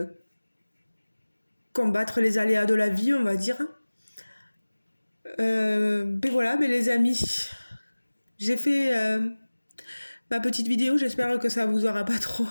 combattre les aléas de la vie, on va dire. Ben voilà, ben les amis, j'ai fait ma petite vidéo, j'espère que ça vous aura pas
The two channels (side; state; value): both; inverted; correlation -1.00